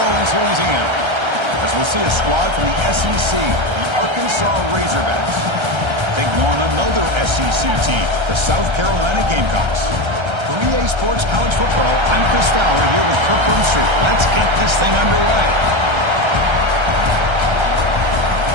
Orleans, Louisiana. As we'll see a squad from the SEC, the Arkansas Razorbacks, taking on another SEC team, the South Carolina Gamecocks. For EA Sports College Football, I'm Chris Fowler here with Kirk Street. Let's get this thing underway.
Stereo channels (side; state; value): left; late; 1.3 ms